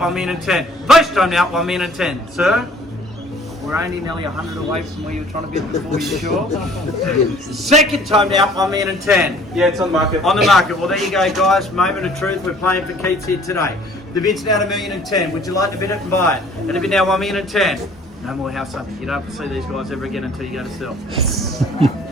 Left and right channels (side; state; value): both; normal; correlation 0.54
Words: million and 10. First time now, $1 million and 10. Sir? We're only nearly 100 away from where you were trying to bid before, you sure? Second time now, $1 million and 10. Yeah, it's on the market. On the market. Well, there you go, guys. Moment of truth. We're playing for keeps here today. The bid's now $1 million and 10. Would you like to bid it and buy it? And the bid now $1 million and 10. No more house hunting. You don't have to see these guys ever again until you go to sell.